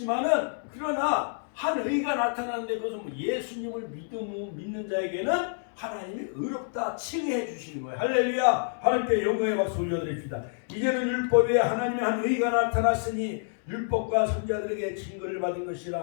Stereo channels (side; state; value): right; silent; 59 dB below the other